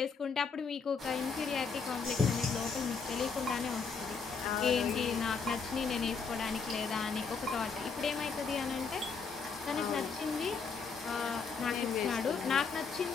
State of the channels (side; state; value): right; quieter; 5.3 dB